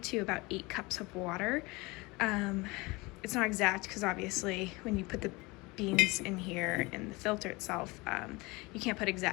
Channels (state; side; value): quieter; right; 24.1 dB